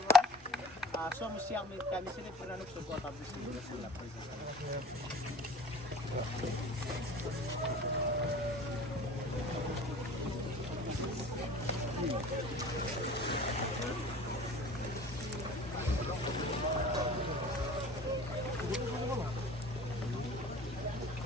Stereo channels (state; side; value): normal; both; correlation 0.44